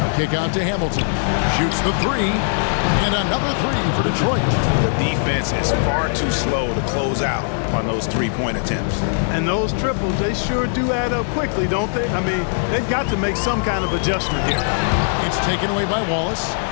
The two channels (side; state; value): right; silent; digital silence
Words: Kick out to Hamilton. Shoots the 3, and another 3 for Detroit. The defense is far too slow to close out on those 3-point attempts. And those triples, they sure do add up quickly, don't they? I mean, they've got to make some kind of adjustment here. It's taken away by Wallace.